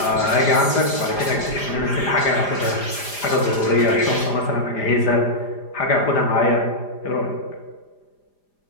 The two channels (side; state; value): right; late; 5.0 ms